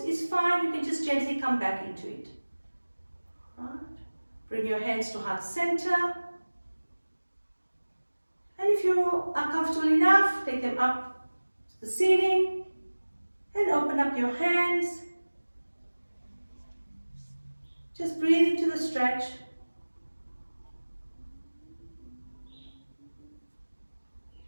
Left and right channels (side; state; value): both; inverted; correlation -1.00